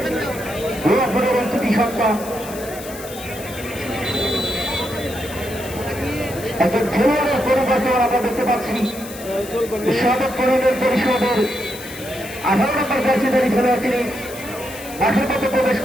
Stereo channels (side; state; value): left; noise; hiss, 14 dB below the sound